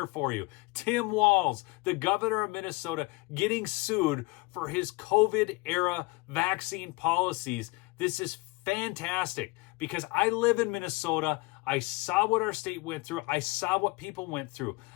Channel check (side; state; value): right; quieter; 24.4 dB